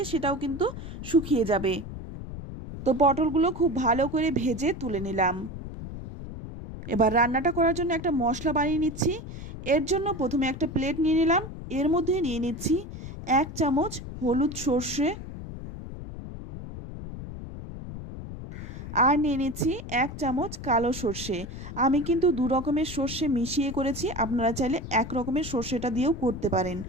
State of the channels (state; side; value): noise; left; rumble, 10 dB below the sound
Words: সেটাও কিন্তু শুকিয়ে যাবে। তো পটলগুলো খুব ভালো করে ভেজে তুলে নিলাম। এবার রান্নাটা করার জন্য একটা মশলা বানিয়ে নিচ্ছি। এর জন্য প্রথমে একটা প্লেট নিয়ে নিলাম। এর মধ্যে নিয়ে নিচ্ছি 1 চামচ হলুদ সর্ষে, আর নিয়ে নিচ্ছি 1 চামচ কালো সর্ষে। আমি কিন্তু 2 রকমের সর্ষে মিশিয়ে করেছি, আপনারা চাইলে 1 রকমের সর্ষেটা দিয়েও করতে পারেন।